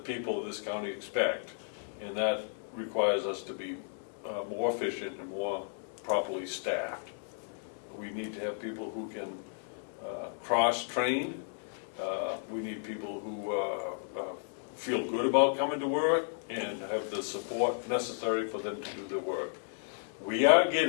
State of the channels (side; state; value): right; silent; 55 dB below the other